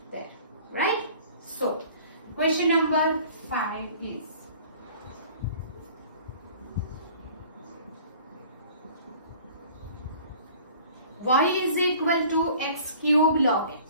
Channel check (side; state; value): both; inverted; correlation -0.49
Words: there. Right? So question number 5 is y is equal to x cube log